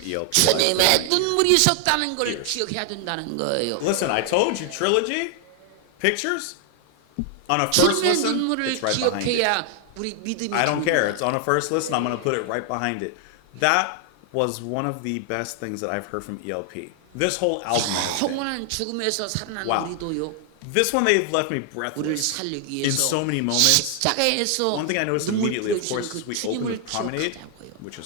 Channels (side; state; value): both; different; correlation 0.00